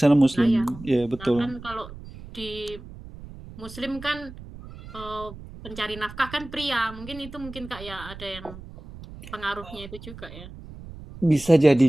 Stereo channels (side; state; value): right; noise; rumble, 15 dB below the sound